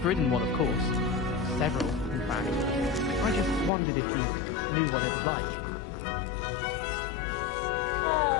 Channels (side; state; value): right; drops out; at 3.7 s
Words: ridden one, of course. Several, in fact. I just wondered if you knew what it's like.